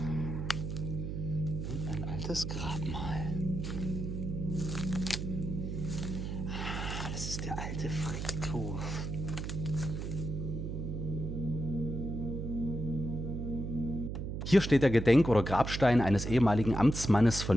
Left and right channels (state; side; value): noise; right; hum, 4 dB below the sound